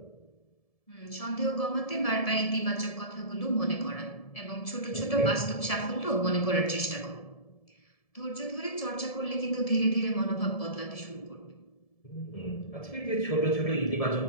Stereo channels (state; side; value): late; right; 1.7 ms